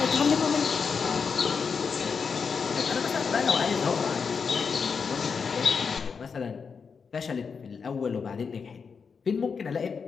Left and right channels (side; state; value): right; quieter; 5.7 dB